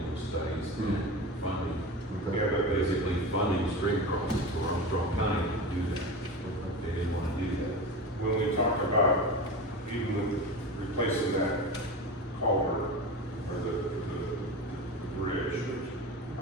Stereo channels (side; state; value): both; normal; correlation 0.27